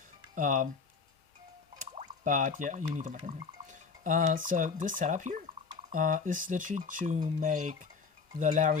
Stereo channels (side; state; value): right; quieter; 5.2 dB